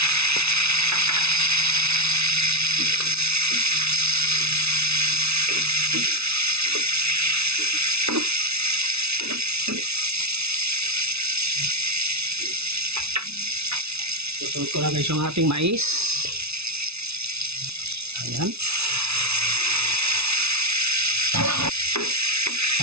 Susunod ko na guys yung ating mais. Ayan.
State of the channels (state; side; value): late; left; 0.80 ms